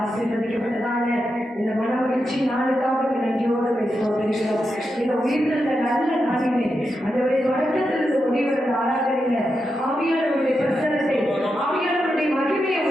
ஆசீர்வதிக்கப்பட்டதான இந்த மனமகிழ்ச்சி நாளுக்காக நன்றியோடு சோதரிக்கிறோம். இந்த உயிர்த்த நல்ல நாளிலே ஆண்டவரே தொடக்கத்திலிருந்து முடிவுற ஆராதனையில ஆவியானவருடைய பிரசனத்தை ஆவியானவருடைய மகிமையை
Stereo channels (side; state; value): both; normal; correlation 0.87